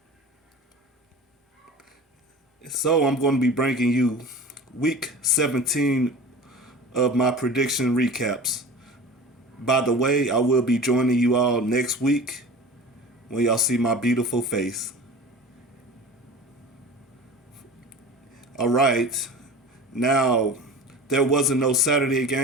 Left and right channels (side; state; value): both; normal; correlation 0.36